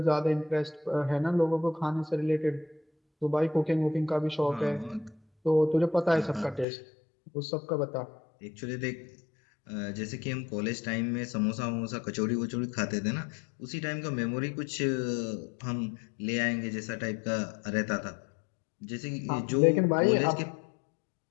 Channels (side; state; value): right; drops out; at 6.7 s